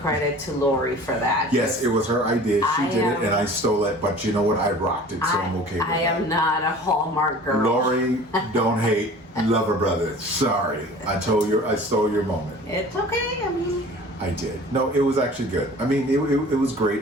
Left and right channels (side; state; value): both; normal; correlation 0.44